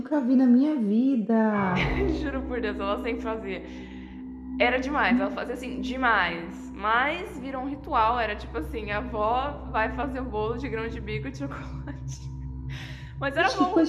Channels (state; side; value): identical; both; correlation 1.00